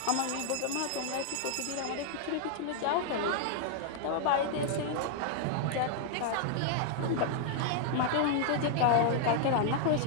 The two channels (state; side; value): different; both; correlation 0.00